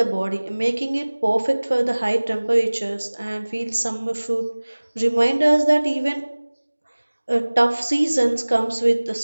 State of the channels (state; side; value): inverted; both; correlation -1.00